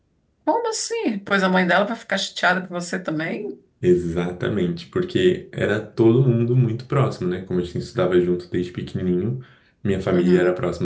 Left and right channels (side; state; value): both; identical; correlation 1.00